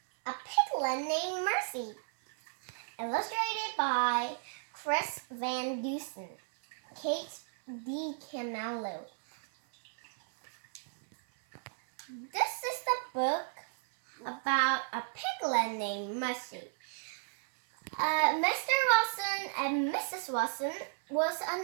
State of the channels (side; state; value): left; silent; 55 dB below the other